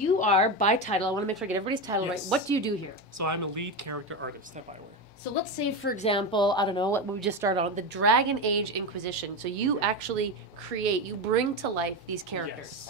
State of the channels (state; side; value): normal; both; correlation 0.17